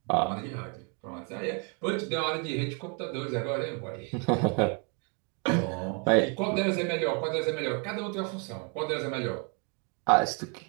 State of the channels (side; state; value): left; quieter; 35.5 dB